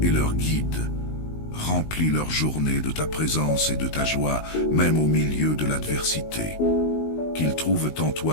et leur guide. Remplis leur journée de ta présence et de ta joie, même au milieu de l'adversité. Qu'ils trouvent en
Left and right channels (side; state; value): right; late; 19 ms